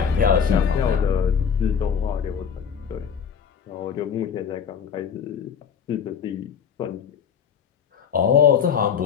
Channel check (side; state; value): right; quieter; 7.2 dB